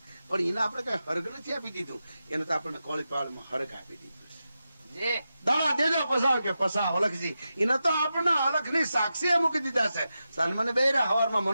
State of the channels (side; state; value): both; inverted; correlation -0.90